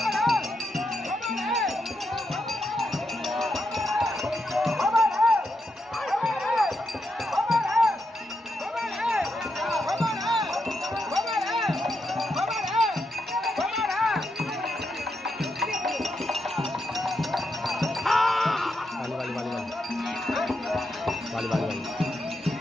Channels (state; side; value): normal; both; correlation 0.83